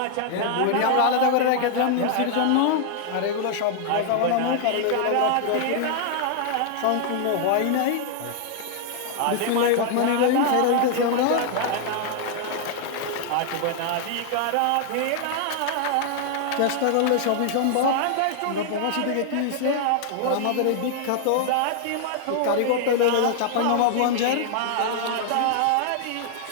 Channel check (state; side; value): different; both; correlation 0.00